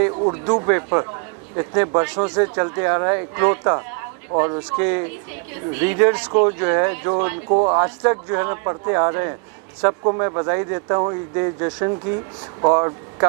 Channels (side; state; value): left; quieter; 34.9 dB